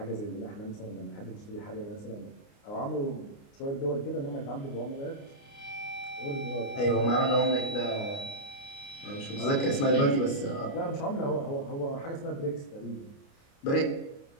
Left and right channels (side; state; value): right; late; 29 ms